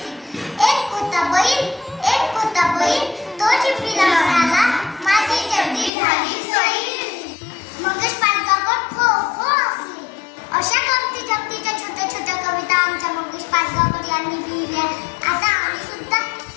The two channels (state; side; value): drops out; right; at 5.9 s